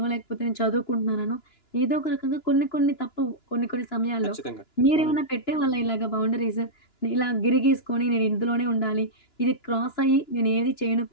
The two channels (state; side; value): late; right; 2.9 ms